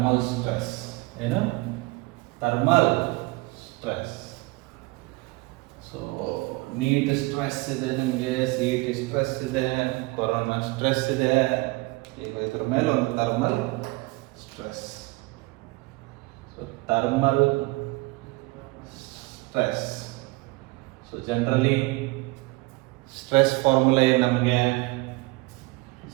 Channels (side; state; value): left; quieter; 23.5 dB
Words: stress. Thermal stress. So, NEET stress ಇದೆ, ನಿಮಗೆ CET stress ಇದೆ, corona stress ಇದೆ. ಈಗ ಇದ್ರ ಮೇಲೆ ಒಂದು thermal stress. So thermal stress. So generally stress formula ಏನು ನಮಗೆ?